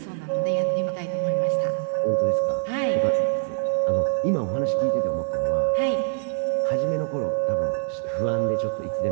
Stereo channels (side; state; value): left; silent; 62 dB below the other